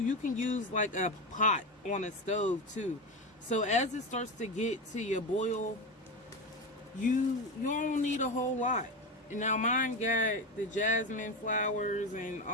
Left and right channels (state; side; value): normal; both; correlation 0.19